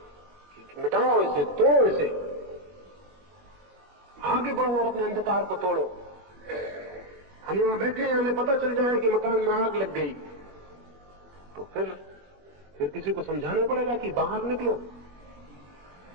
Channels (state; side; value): late; left; 21 ms